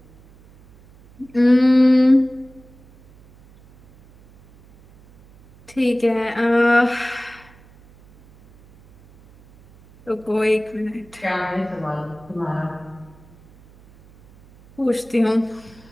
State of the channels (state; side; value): noise; right; hum, 26 dB below the sound